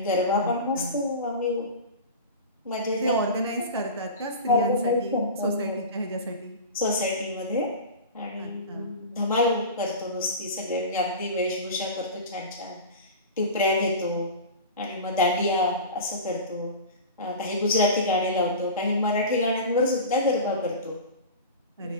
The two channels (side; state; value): both; inverted; correlation -0.30